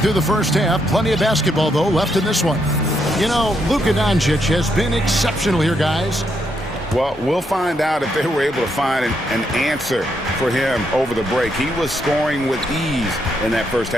the first half. Plenty of basketball, though, left in this one. You know, Luka Doncic has been exceptional here, guys. Well, we'll find out if they were able to find an answer for him over the break. He was scoring with ease in that first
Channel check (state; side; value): normal; both; correlation 0.77